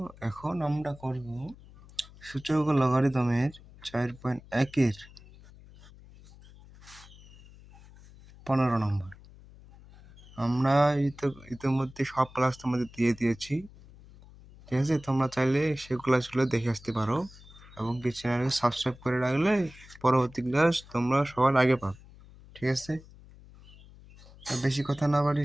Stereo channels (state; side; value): noise; left; hum, 22 dB below the sound